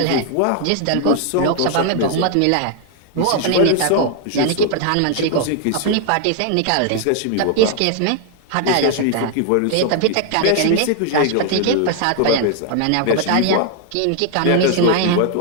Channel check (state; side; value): different; both; correlation 0.00